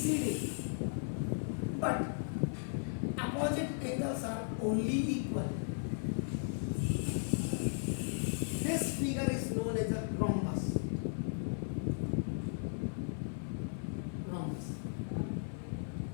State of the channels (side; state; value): right; silent; 54 dB below the other